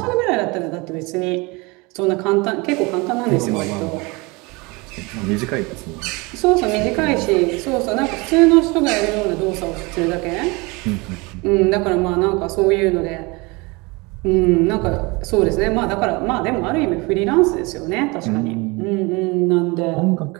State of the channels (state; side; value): quieter; left; 26.0 dB